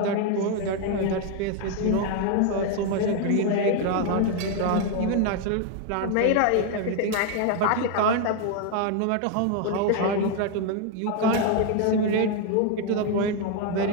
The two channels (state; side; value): different; both; correlation 0.01